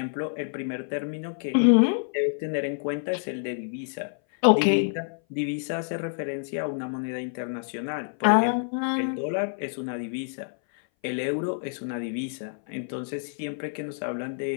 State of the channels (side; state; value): right; silent; 58 dB below the other